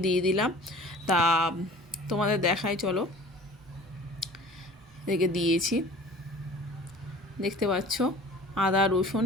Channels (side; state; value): both; normal; correlation 0.45